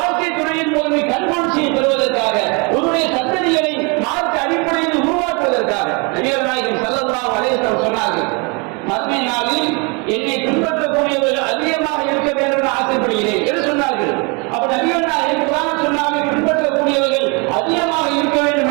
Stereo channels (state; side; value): quieter; left; 31.5 dB